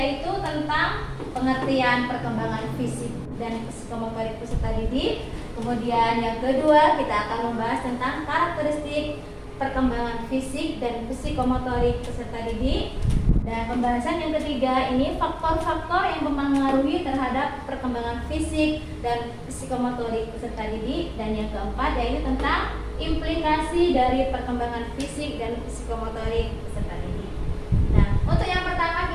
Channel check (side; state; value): both; identical; correlation 1.00